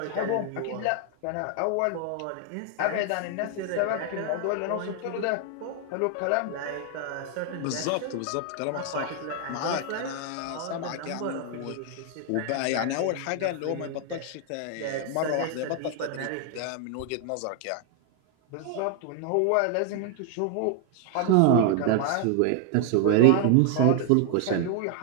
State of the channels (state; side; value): different; both; correlation 0.00